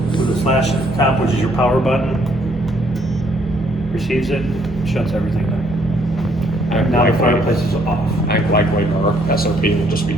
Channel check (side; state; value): left; noise; hum, 19 dB below the sound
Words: the slash at the top, which is your power button. Receives it, shuts everything down. Now the fireplace is off. I like our SOP will just be